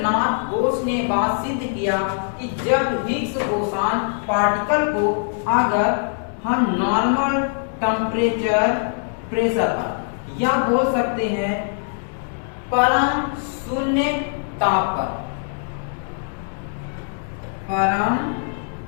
बोस ने बात सिद्ध किया कि जब हिग्स बोसान पार्टिकल को अगर हम नॉर्मल टेम्परेचर प्रेशर पर या बोल सकते हैं परम शून्य ताप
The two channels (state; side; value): silent; right; digital silence